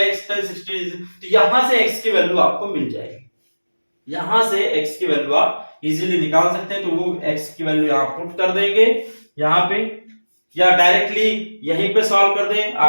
x tan 60, तो यहां से x की वैल्यू आपको मिल जाएगी, यहां से x की वैल्यू आप इजीली निकाल सकते हैं। तो वो x की वैल्यू यहां पुट कर देंगे यहां पे, या डायरेक्टली यहीं पे सॉल्व कर दें,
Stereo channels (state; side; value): inverted; both; correlation -1.00